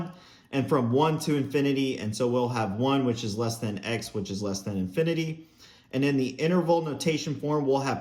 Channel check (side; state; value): both; identical; correlation 1.00